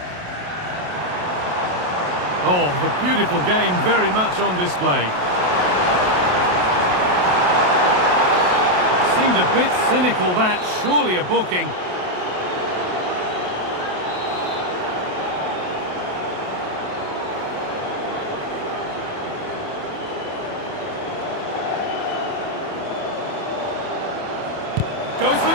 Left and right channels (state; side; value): late; left; 28 ms